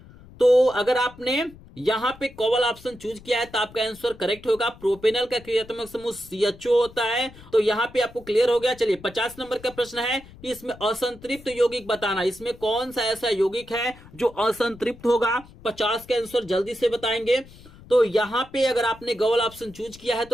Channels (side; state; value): left; noise; rumble, 21 dB below the sound